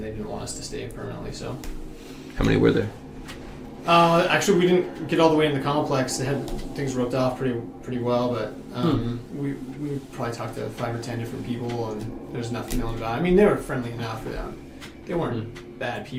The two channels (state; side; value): identical; both; correlation 1.00